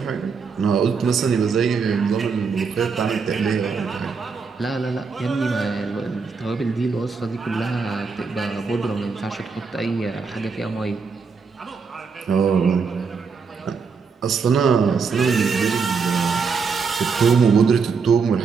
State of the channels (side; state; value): left; quieter; 5.3 dB